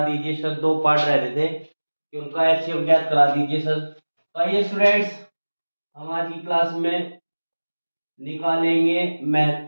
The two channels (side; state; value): both; inverted; correlation -1.00